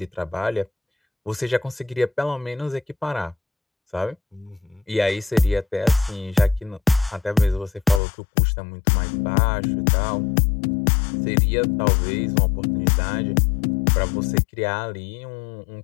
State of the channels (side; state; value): right; drops out; at 8.0 s